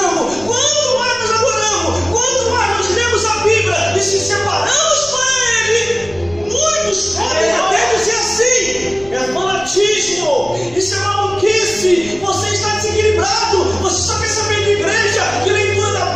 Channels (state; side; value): noise; left; rumble, 21 dB below the sound